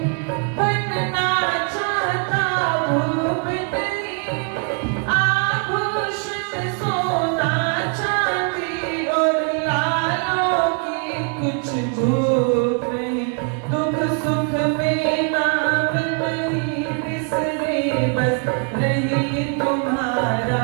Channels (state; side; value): quieter; left; 40.0 dB